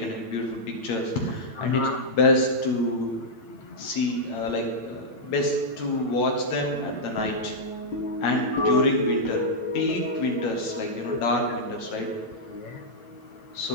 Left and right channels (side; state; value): right; late; 9.0 ms